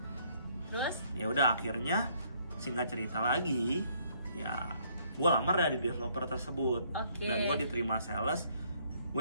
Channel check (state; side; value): inverted; both; correlation -0.66